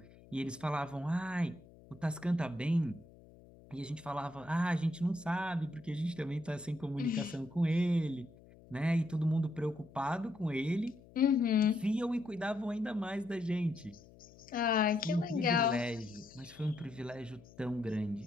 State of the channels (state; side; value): noise; left; hum, 23 dB below the sound